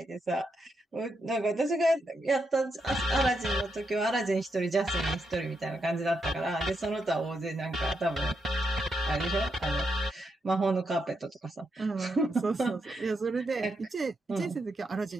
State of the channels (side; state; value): both; normal; correlation 0.82